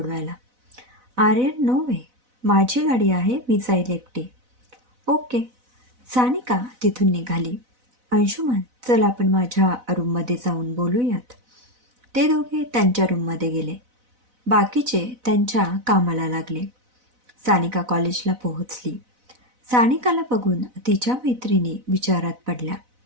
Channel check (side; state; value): left; late; 4.0 ms